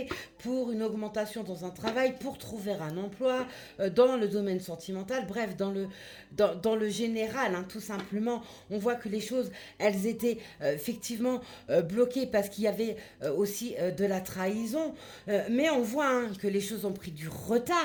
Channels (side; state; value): both; identical; correlation 1.00